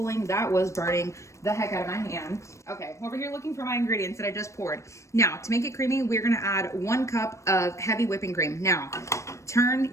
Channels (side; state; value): right; late; 0.15 ms